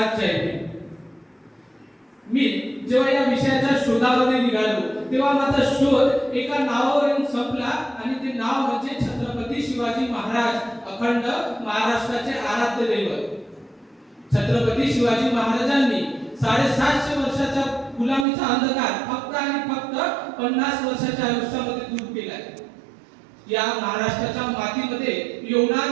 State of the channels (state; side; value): drops out; left; at 18.2 s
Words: जय भीम. मी जेव्हा या विषयाच्या शोधामध्ये निघालो तेव्हा माझा शोध एका नावावर येऊन संपला आणि ते नाव म्हणजे छत्रपती शिवाजी महाराज, अखंड महाराष्ट्राचे आराध्य दैवत. छत्रपती शिवाजी महाराजांनी 750 वर्षाचा गुलामीचा अंधकार फक्त आणि फक्त 50 वर्षाच्या आयुष्यामध्ये दूर केलाय. या महाराष्ट्राच्या मातीमध्ये